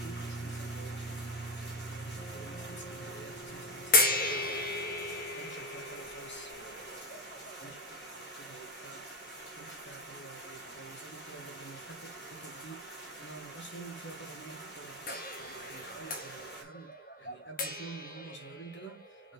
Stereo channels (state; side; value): normal; both; correlation 0.14